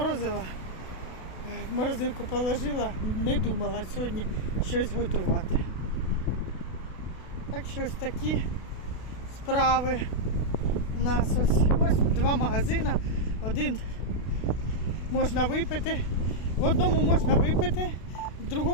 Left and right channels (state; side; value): late; right; 32 ms